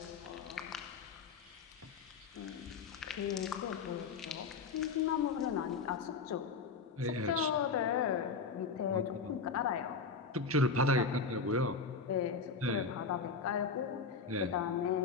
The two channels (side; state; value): right; quieter; 4.8 dB